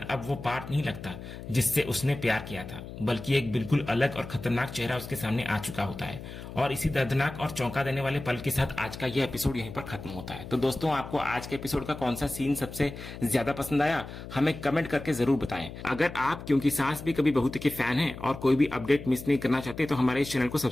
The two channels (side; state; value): left; noise; hum, 12 dB below the sound